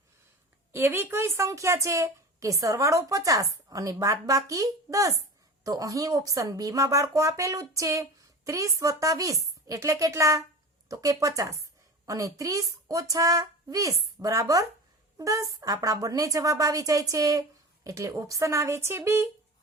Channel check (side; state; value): both; normal; correlation 0.32